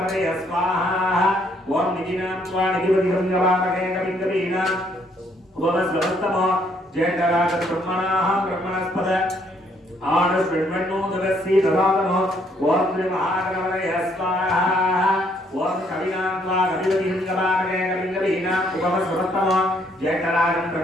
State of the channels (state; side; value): normal; both; correlation 0.68